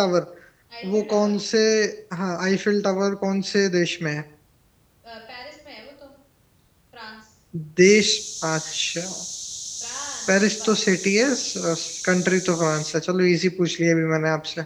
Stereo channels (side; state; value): both; identical; correlation 1.00